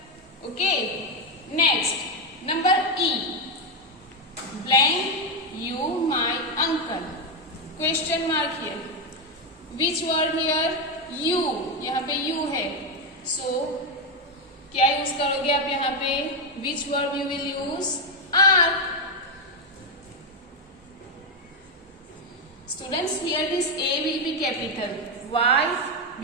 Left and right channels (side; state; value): both; normal; correlation 0.05